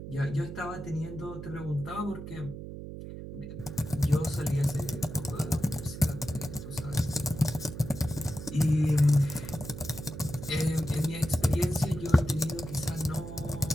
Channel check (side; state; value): right; noise; hum, 10 dB below the sound